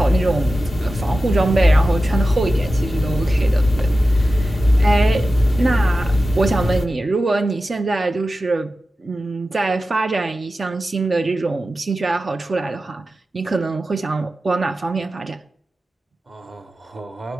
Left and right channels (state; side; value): normal; both; correlation 0.93